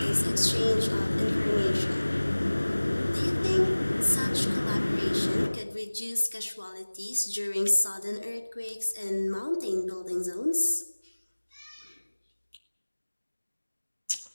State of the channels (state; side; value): inverted; both; correlation -1.00